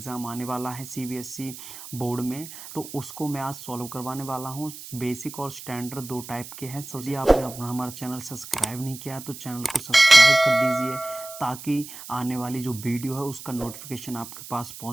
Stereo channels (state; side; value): noise; right; hiss, 13 dB below the sound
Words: आने वाला है सीबीएसई बोर्ड में, तो उसको मैं आज सॉल्व करवाने वाला हूं। बेसिक और स्टैंडर्ड दो टाइप के हैं। यदि आपने अपना हमारा चैनल सब्सक्राइब नहीं किया तो चैनल को सब्सक्राइब कर दीजिए ताकि आने वाली जो वीडियो है उसका नोटिफिकेशन आपके पास